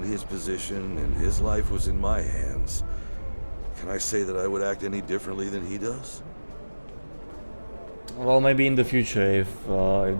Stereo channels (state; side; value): inverted; both; correlation -1.00